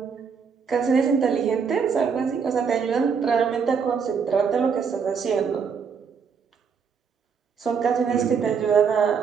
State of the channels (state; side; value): quieter; left; 6.2 dB